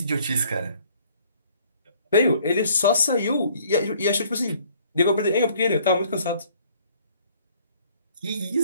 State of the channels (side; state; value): both; inverted; correlation -0.59